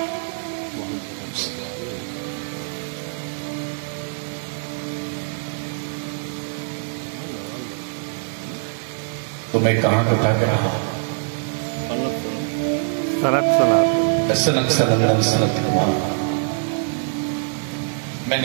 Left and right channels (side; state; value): left; silent; 57 dB below the other